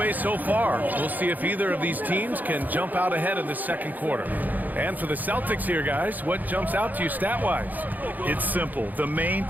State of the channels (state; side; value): late; left; 0.083 ms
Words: so far. We'll see if either of these teams can jump out ahead in the second quarter. And for the Celtics here, guys, what jumps out to you stat-wise? It's simple. The main